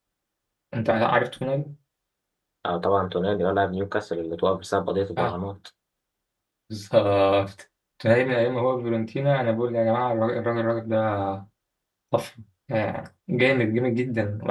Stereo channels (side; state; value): both; identical; correlation 1.00